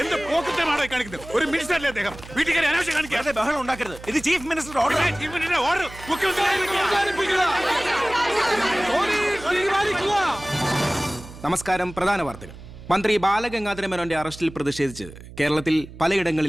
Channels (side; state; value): right; noise; hum, 16 dB below the sound